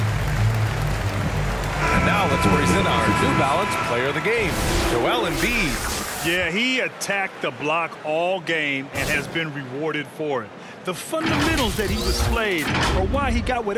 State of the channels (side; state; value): both; identical; correlation 1.00